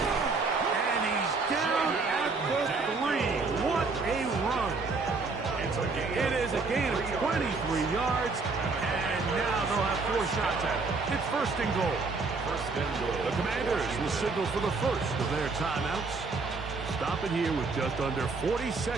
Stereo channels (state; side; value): quieter; left; 4.1 dB